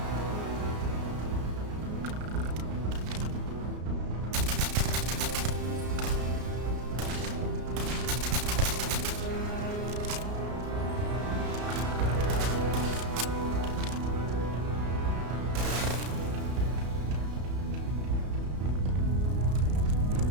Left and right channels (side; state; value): left; late; 33 ms